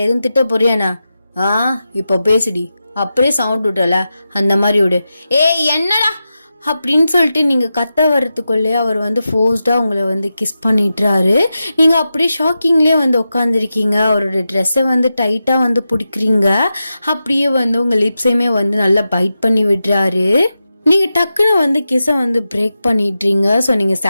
எதுவும் திட்ட போறியாண்ணா? இப்ப பேசுடி. அப்படியே சவுண்ட் விட்டல அந்த மாதிரி விடு. ஏய் என்னடா அப்படின்னு சொல்லிட்டு நீங்க கத்த வர்றதுக்குள்ளே அவர் வந்து ஃபோர்ஸ்டா உங்களை வந்து கிஸ் பண்ணிட்டுறாரு. நீங்க அப்படியே ஷாக்கிங்லேயே வந்து உட்காந்துருக்கீங்க. அவரோட ட்ரெஸ்ஸை வந்து டைட்டா வந்து பிடிக்கிறீங்க. அப்படியே வந்து உங்க லிப்ஸையுமே வந்து நல்லா பைட் பண்ணி விடுறாரு. நீங்க டக்குன்னு வந்து கிஸை வந்து பிரேக் பண்ணிடுறீங்க. ஸோ நீங்க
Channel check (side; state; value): both; inverted; correlation -0.91